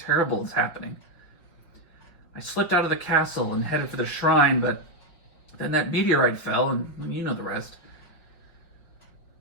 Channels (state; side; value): late; right; 5.3 ms